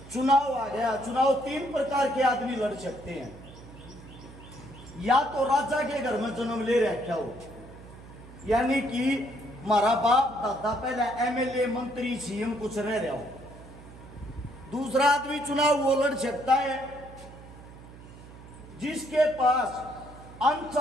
चुनाव आ गया। चुनाव तीन प्रकार के आदमी लड़ सकते हैं। या तो राजा के घर में जन्म ले रखा हो, यानी कि हमारा बाप दादा पहले एमएलए, मंत्री, सीएम कुछ रह रहा हो। दूसरा आदमी चुनाव वो लड़ सकता है जिसके पास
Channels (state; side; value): noise; right; hum, 18 dB below the sound